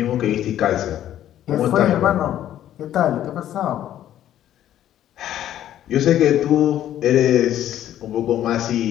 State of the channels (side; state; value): right; quieter; 11.8 dB